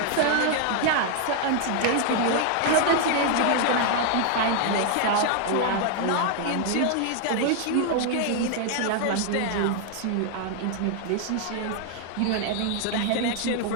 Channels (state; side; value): different; both; correlation 0.00